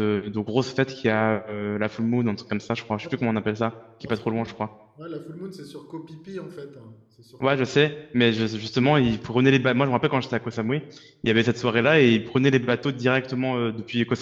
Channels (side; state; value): both; identical; correlation 1.00